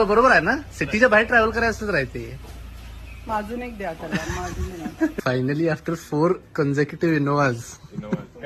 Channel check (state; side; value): identical; both; correlation 1.00